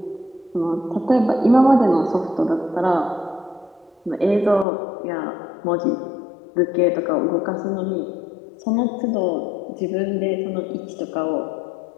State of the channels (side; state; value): right; drops out; at 4.7 s